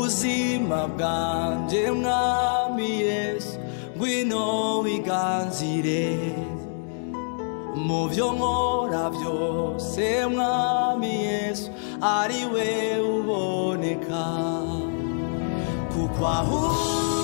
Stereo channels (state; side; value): silent; right; digital silence